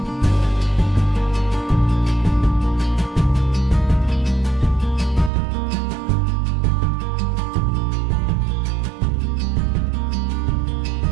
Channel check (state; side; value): drops out; left; at 5.3 s